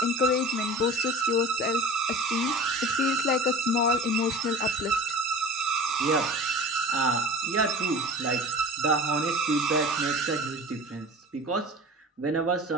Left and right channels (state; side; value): normal; both; correlation 0.38